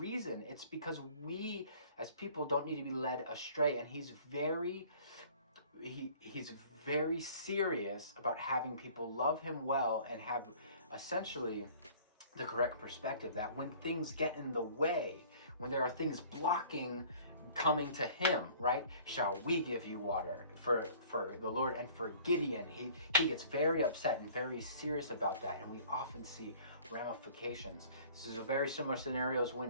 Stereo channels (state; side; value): inverted; both; correlation -0.51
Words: It's because we as people don't need to be led astray, and he's very serious about having people love him well and have essentially the correct perspective, that when things get in the way, when there are things blocking coming to him, right? "Shall we give you water?" For the Lord and for Gideon, he gets very upset and very serious about that, and we often see ramifications. This is a very similar scenarios